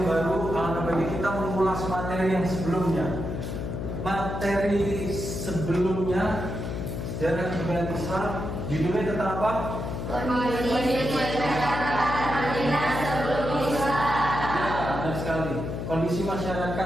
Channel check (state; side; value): noise; left; hum, 5 dB below the sound